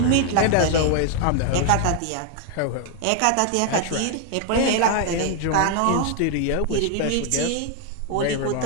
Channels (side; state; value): both; different; correlation 0.00